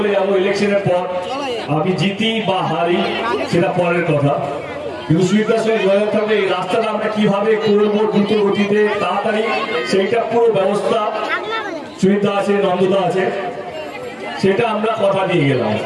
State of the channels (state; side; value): identical; both; correlation 1.00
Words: যাবো, ইলেকশনের পর আমি জিতি বা হারি সেটা পরের কথা, কিন্তু সুবিধার সঙ্গে যোগাযোগ থাকবে এই রাস্তাটা আমরা কিভাবে করবো দ্রুত গতিতে তাড়াতাড়ি, সেইটা পুরো ব্যবস্থা সুবিধা আছে, নন্দদা আছে, সেটা আমরা কথা দিয়ে গেলাম।